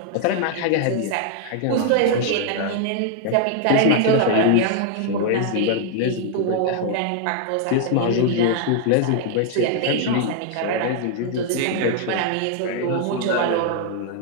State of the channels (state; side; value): different; both; correlation 0.00